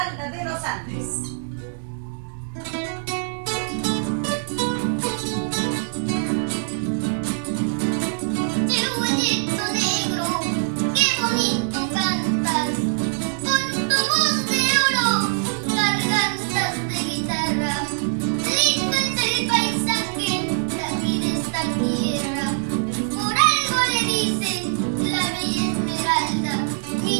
de los Andes. Chihuahuito negro, qué bonito cantas, con tu voz de oro, gargantas de guitarra. Lindo es el paisaje de aquí de esta tierra, por algo le dicen la bella Esmeralda, mi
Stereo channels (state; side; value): silent; left; 63 dB below the other